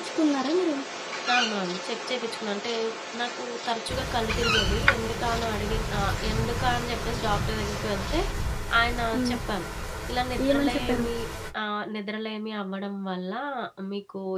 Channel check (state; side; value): identical; both; correlation 1.00